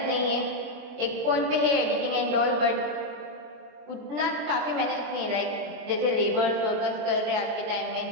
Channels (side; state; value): left; late; 24 ms